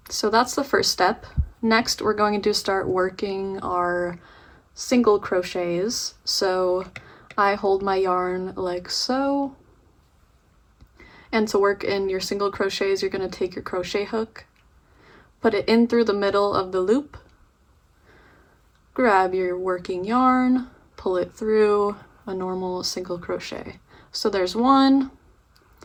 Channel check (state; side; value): identical; both; correlation 1.00